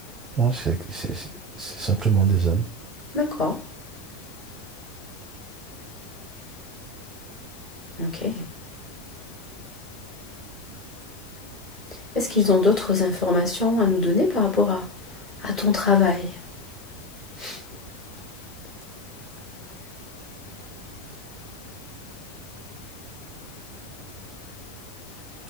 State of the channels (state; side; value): noise; left; hiss, 21 dB below the sound